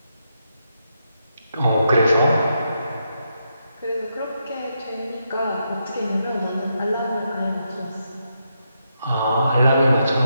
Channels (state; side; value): inverted; both; correlation -0.82